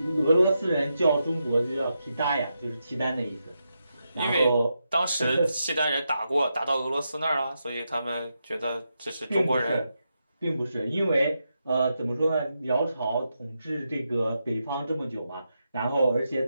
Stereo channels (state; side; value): inverted; both; correlation -0.85